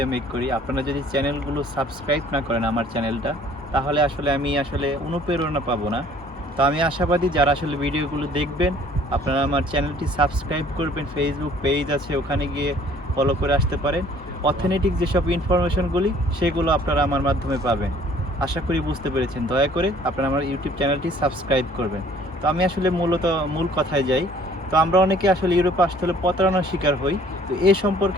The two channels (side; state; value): both; normal; correlation 0.55